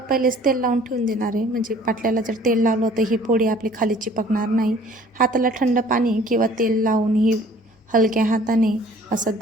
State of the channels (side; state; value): both; normal; correlation 0.53